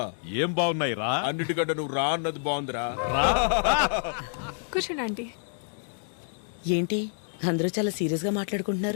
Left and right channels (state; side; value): silent; right; digital silence